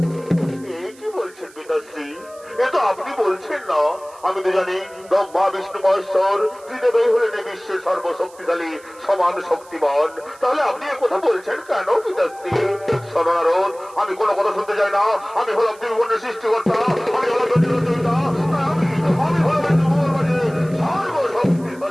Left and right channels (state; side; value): noise; right; hiss, 25 dB below the sound